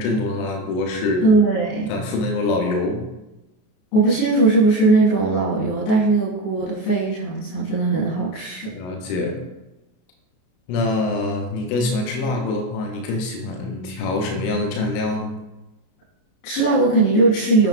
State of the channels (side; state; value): right; late; 33 ms